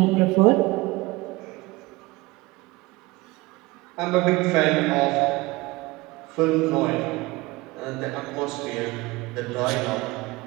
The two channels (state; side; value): quieter; left; 21.8 dB